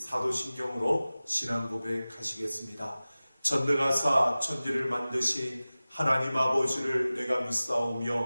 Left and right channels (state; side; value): inverted; both; correlation -0.97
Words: 신앙 고백하시겠습니다. 전능하사 천지를 만드신 하나님 아버지를 내가